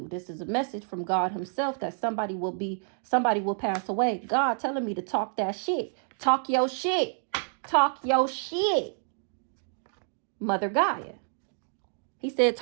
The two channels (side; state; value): left; silent; digital silence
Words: This is a message from God himself that somebody will pass away. God telling me to talk that shit. Talk your shit. Talk your shit. Mother Gaia. He said,